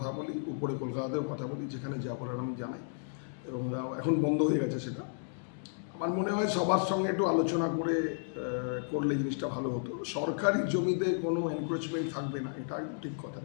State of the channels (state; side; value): silent; right; digital silence